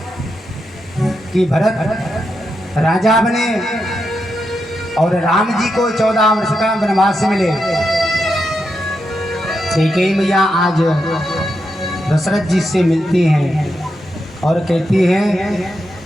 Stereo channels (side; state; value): both; normal; correlation 0.85